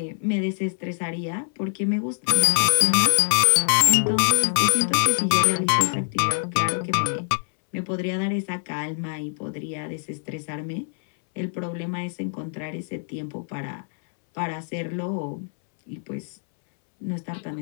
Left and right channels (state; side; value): silent; right; 62 dB below the other